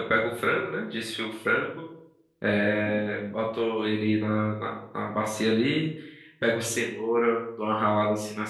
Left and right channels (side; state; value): both; identical; correlation 1.00